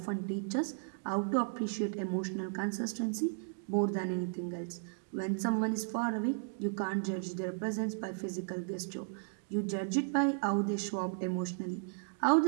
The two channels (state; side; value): silent; left; digital silence